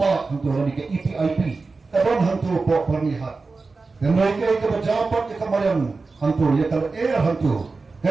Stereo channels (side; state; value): left; quieter; 4.0 dB